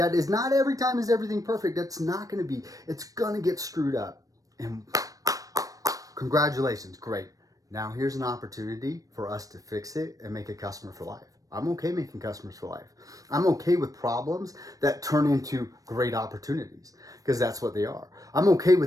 is not every time is everything perfect. That's not going to be. It's going to get screwed up. And congratulations, great. Now here's an opportunity for us to fix it and make a customer for life. I'm okay making customers for life. I'm okay with problems that turn into great opportunities because that's what they are. I'm okay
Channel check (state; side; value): late; left; 0.17 ms